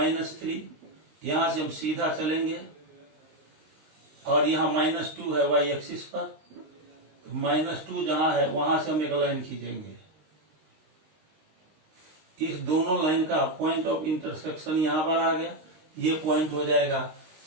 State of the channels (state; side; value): late; left; 19 ms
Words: यहाँ से हम सीधा चलेंगे और यहाँ -2 है y एक्सिस पर, -2 जहाँ है वहां से हम एक लाइन खींचेंगे, इस दोनों लाइन का पॉइंट ऑफ इंटरसेक्शन यहाँ पर आ गया, ये पॉइंट हो जाएगा